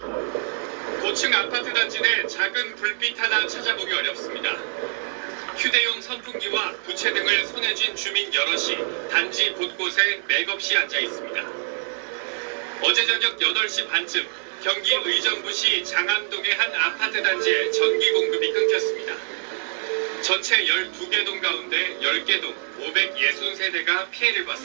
고층 아파트 단지 내 작은 불빛 하나 찾아보기 어렵습니다. 휴대용 선풍기와 부채 등을 손에 쥔 주민 여럿이 단지 곳곳에 맥없이 앉아 있습니다. 어제 저녁 8시 반쯤 경기 의정부시 장암동의 한 아파트 단지에 전기 공급이 끊겼습니다. 전체 12개 동 가운데 10개 동 560세대가 피해를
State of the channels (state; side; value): silent; left; 62 dB below the other